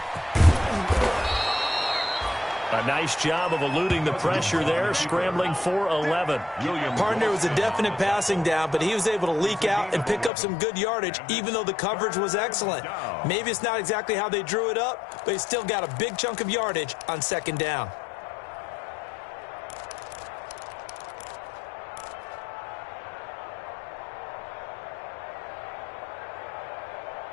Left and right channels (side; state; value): right; drops out; at 10.3 s